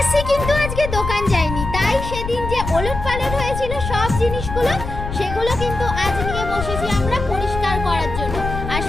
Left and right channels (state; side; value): noise; left; rumble, 6 dB below the sound